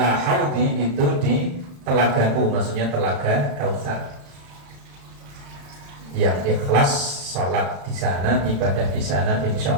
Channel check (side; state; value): left; late; 35 ms